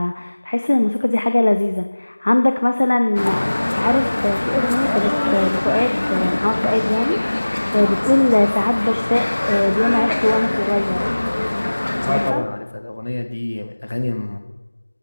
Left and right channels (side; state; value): both; inverted; correlation -1.00